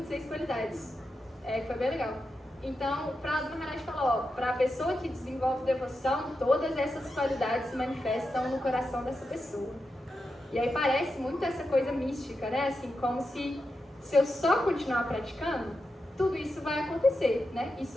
qualidades. Que foi bem legal. Então, para o Maharaj falou, para a pessoa que desenvolve devoção, todas essas qualidades se manifestam no coração dessa pessoa. E aí parece muito essa coisa mística, né? Assim, como se eu só continuar praticando, tudo isso vai acontecer, né?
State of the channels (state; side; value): normal; both; correlation 0.88